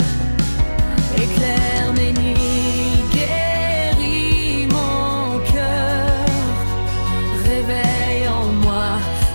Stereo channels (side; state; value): both; inverted; correlation -1.00